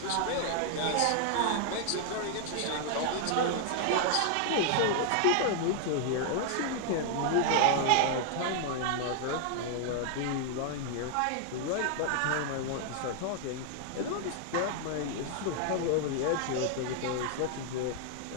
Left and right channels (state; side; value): different; both; correlation 0.00